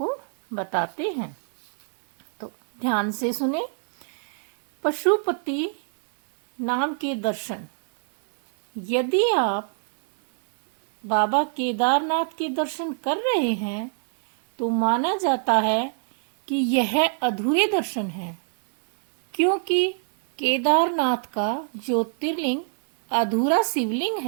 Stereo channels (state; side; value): silent; left; digital silence